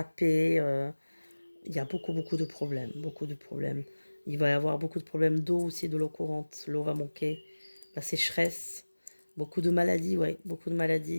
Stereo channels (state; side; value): inverted; both; correlation -1.00